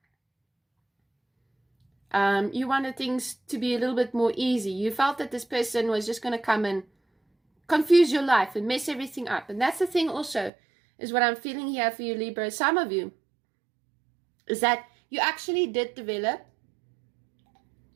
You wanted things to be a little bit more easy. You felt that this person was just going to come and confuse your life and mess everything up, and that's the thing also. Is what I'm feeling here for you, Libra. Some of you is that you actually did develop.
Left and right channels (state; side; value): drops out; left; at 10.5 s